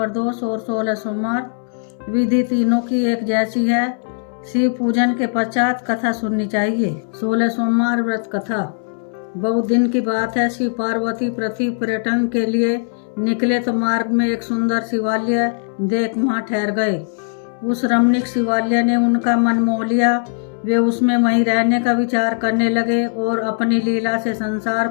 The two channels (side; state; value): right; silent; digital silence